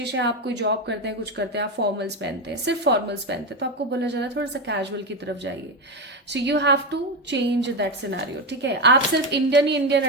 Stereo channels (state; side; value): normal; both; correlation 0.13